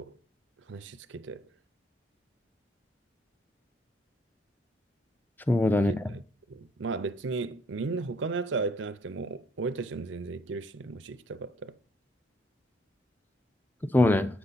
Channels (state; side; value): normal; both; correlation 0.68